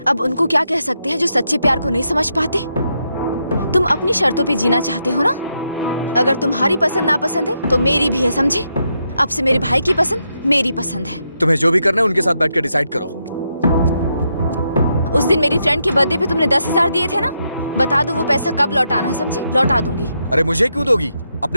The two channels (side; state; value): both; inverted; correlation -0.82